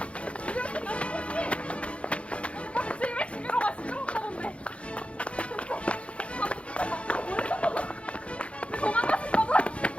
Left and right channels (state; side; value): late; right; 0.061 ms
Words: 미디어팀 몇 명같이 같이 예배 집으로 가시죠? 하던데 왜 도망가신 거죠?